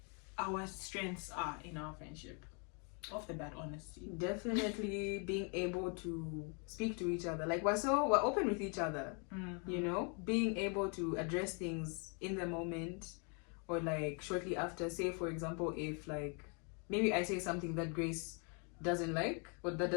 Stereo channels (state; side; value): quieter; right; 36.6 dB